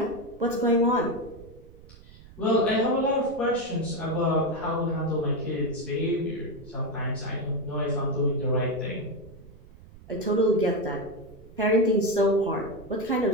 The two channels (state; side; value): noise; right; rumble, 20 dB below the sound